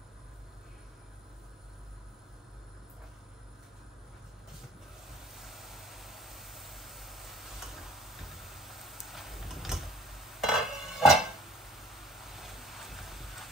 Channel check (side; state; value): both; normal; correlation 0.52